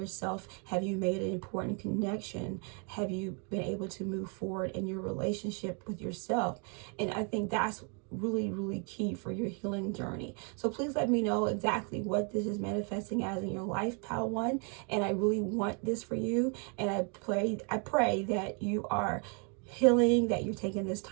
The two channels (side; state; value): left; quieter; 37.5 dB